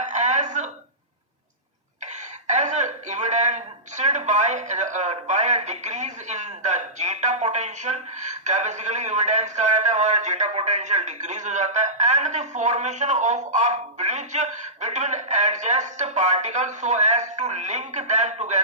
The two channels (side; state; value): both; normal; correlation -0.18